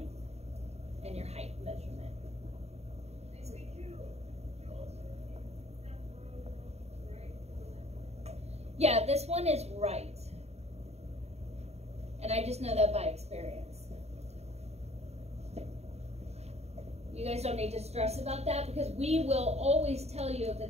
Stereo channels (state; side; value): late; left; 0.31 ms